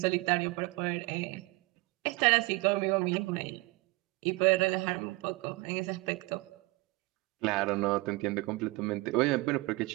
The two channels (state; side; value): quieter; left; 24.0 dB